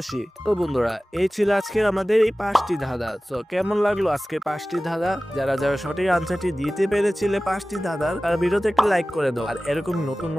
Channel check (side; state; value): both; normal; correlation 0.97